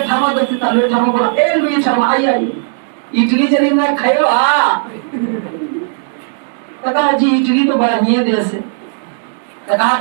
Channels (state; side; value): silent; left; digital silence